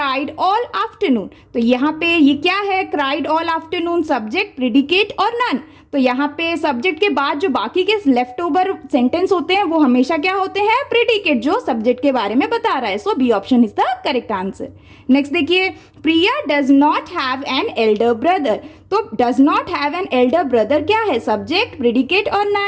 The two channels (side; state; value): both; identical; correlation 1.00